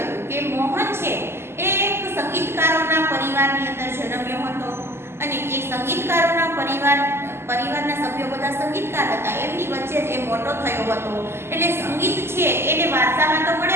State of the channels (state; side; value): late; left; 0.12 ms